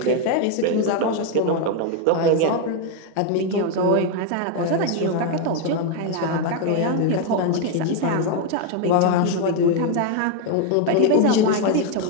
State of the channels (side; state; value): both; different; correlation 0.01